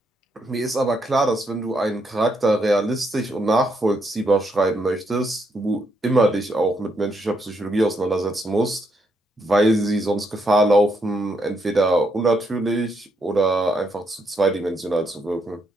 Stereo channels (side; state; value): both; normal; correlation 0.77